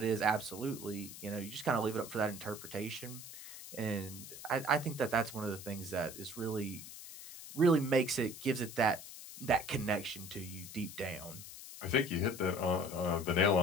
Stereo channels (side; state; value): left; noise; hiss, 12 dB below the sound